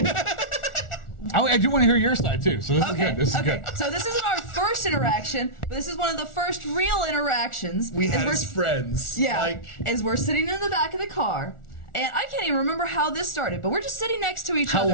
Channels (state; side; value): late; right; 1.4 ms